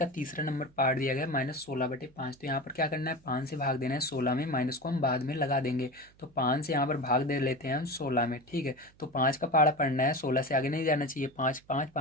तीसरा नंबर पार्ट दिया गया है -16/5। तो यहाँ पर क्या करना है, 5 से भाग देना है 16 में, माइनस को हम बाद में लगा देंगे। तो 5 से यहाँ पर भाग दे लेते हैं हम 16 में। ठीक है, तो 5 का पहाड़ा पढ़ना है, 16 से आगे नहीं जाना चाहिए। 5 5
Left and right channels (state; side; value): noise; right; hum, 29 dB below the sound